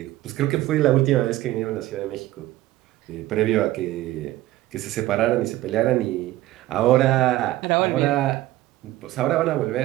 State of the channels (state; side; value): quieter; left; 16.0 dB